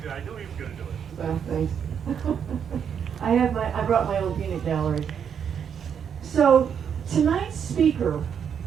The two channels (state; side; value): quieter; left; 7.7 dB